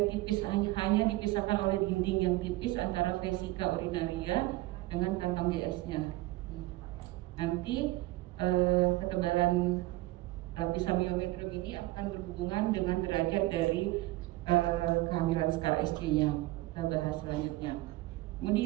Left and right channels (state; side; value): quieter; left; 18.7 dB